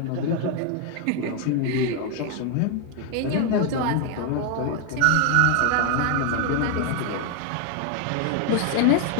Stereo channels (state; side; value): different; both; correlation 0.01